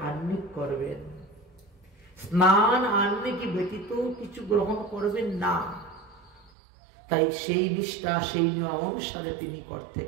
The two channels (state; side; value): drops out; left; at 6.5 s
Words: আহ্নিক করবেন। স্নান আহ্নিক ব্যতীত কিছু গ্রহণ করবেন না। তাই সেই নিষ্ঠা, সেই নিয়ম অনুসারে তিনি করতে